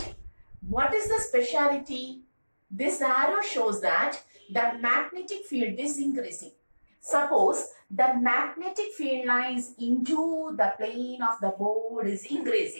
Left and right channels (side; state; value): both; inverted; correlation -1.00